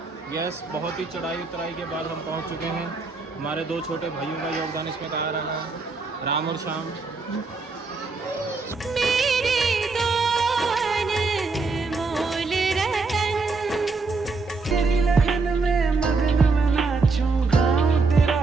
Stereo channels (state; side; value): quieter; left; 4.1 dB